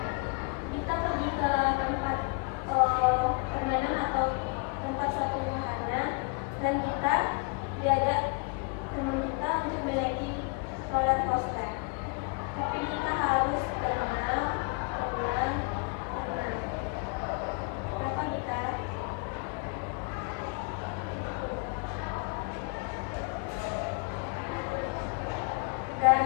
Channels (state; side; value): quieter; right; 32.8 dB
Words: kita pergi ke tempat permainan atau tempat suatu wahana dan kita diajak teman kita untuk menaiki roller coaster. Tapi kita harus tenang. Kenapa kita? Dan